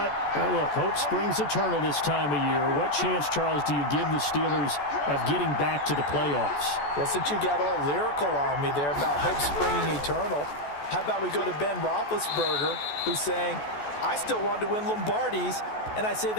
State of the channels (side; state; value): right; late; 14 ms